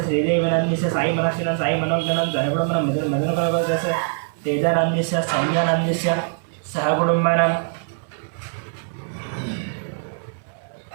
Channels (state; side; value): silent; left; 64 dB below the other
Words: श्रीदेवी नंदिस्य साई मनस्विन साई मनोज्ञनं सहकुटुंबनं मदनकुल गोत्रस्य तेज नंदिस्य सौम्य नंदिस्य सहकुटुंबनं